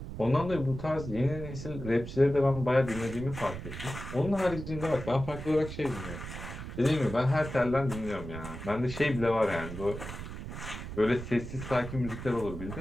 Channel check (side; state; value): right; noise; rumble, 9 dB below the sound